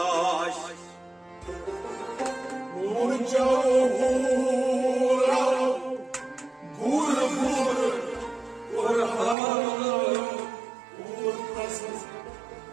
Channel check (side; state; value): left; drops out; at 9.3 s